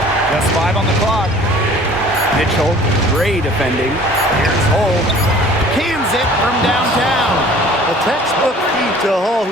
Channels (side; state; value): both; normal; correlation 0.50